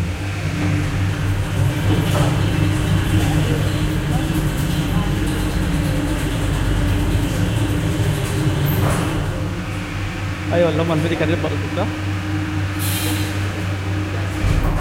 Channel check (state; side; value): identical; both; correlation 1.00